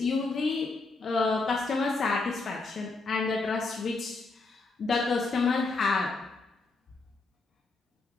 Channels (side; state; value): right; quieter; 3.7 dB